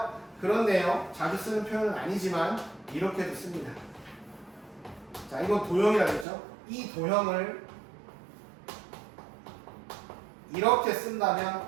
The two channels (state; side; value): drops out; left; at 6.2 s